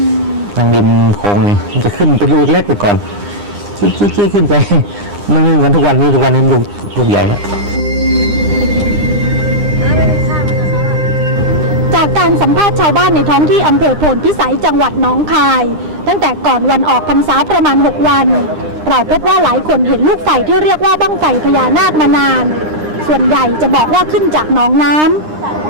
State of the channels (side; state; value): left; late; 9.8 ms